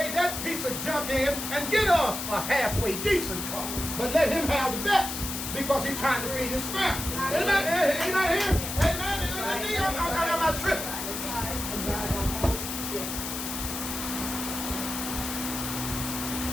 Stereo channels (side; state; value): left; noise; hiss, 5 dB below the sound